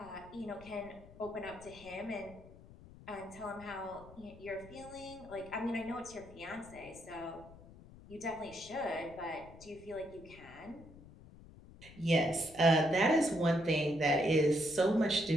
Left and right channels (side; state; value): left; noise; rumble, 19 dB below the sound